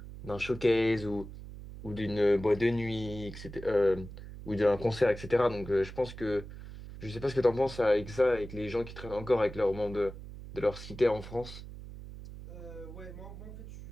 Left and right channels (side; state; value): right; noise; hum, 13 dB below the sound